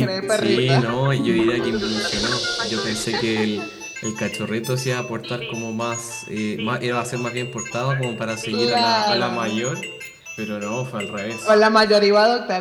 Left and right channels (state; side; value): identical; both; correlation 1.00